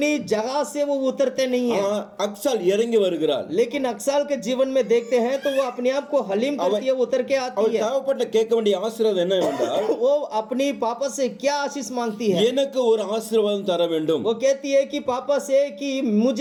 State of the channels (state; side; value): identical; both; correlation 1.00